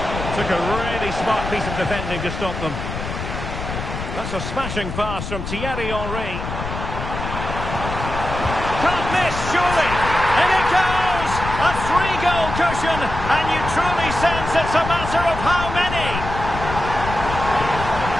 Took a really smart piece of defending to stop them. That's a smashing pass from Thierry Henry. Can't miss, surely. And it goes! A 3-goal cushion, and you truly sense it's a matter of how many.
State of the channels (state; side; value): noise; left; rumble, 6 dB below the sound